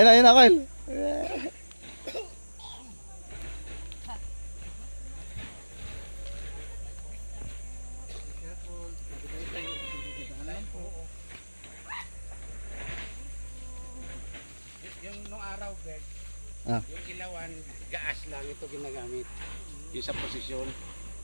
na, Kyle. Yung nung araw, Bert, Ah. yung ilawan, gaas lang ito ginagamit. Yung sa posisyon,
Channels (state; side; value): inverted; both; correlation -1.00